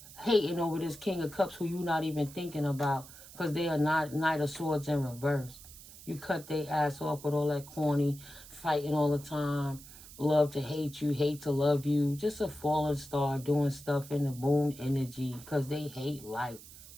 Hating over this King of Cups who you not even thinking about because they are not Knight of Swords in reverse. You cut their ass off with all that corny fighting all the time. Love to hate you, hate to love you. Just a fallen star doing stuff in the moon energy because they hate life.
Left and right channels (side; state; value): right; noise; hiss, 18 dB below the sound